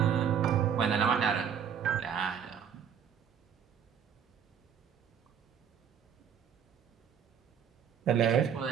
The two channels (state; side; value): quieter; left; 8.1 dB